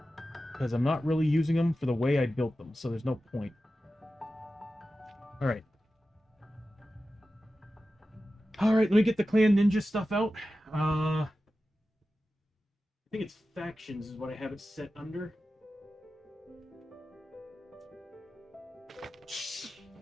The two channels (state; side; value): normal; both; correlation 0.93